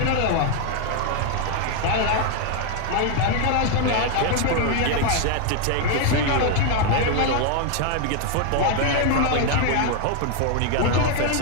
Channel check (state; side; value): different; both; correlation 0.00